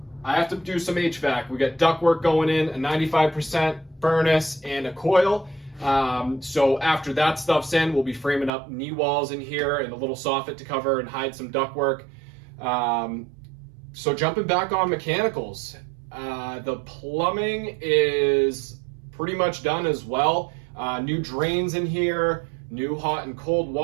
I have to do some HVAC. We got ductwork going in, a 95% furnace and a coil. So after that stuff's in, we'll be framing up knee walls in here and a little soffit to cover and hide some ductwork. So jumping back on mechanicals, the plumbing is pretty much done as well. New drains in here, new hot and cold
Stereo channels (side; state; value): left; drops out; at 8.5 s